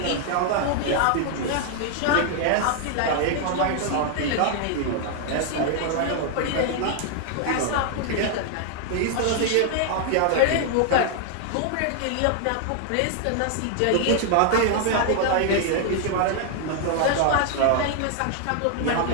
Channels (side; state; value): both; different; correlation 0.00